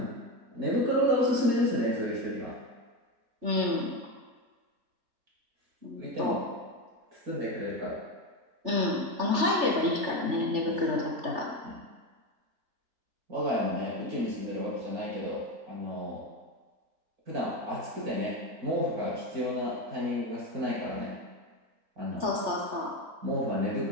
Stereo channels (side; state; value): left; late; 3.3 ms